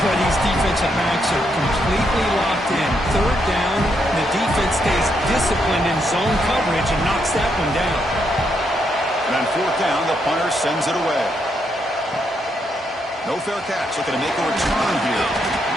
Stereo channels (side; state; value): both; normal; correlation 0.78